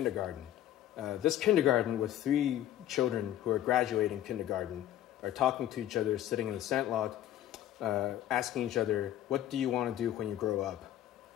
This kindergarten with 3 children who are graduating kindergarten are talking to each other, sitting in the sandlot, asking each other, what do you want to do when you grow up?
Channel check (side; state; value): right; quieter; 12.2 dB